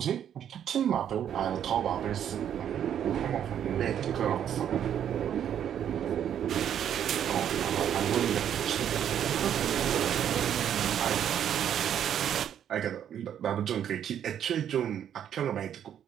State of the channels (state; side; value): quieter; left; 9.5 dB